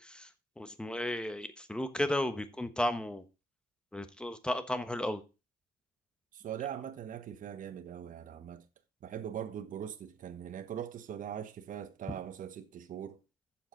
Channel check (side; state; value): both; normal; correlation 0.75